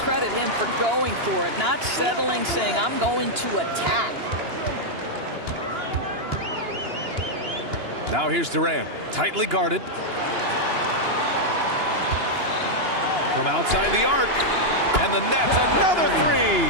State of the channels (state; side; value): late; left; 2.9 ms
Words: credit him for going for it, not settling, saying, I'm going to attack. Now here's Durant, tightly guarded. From outside the arc, and the Nets, another 3.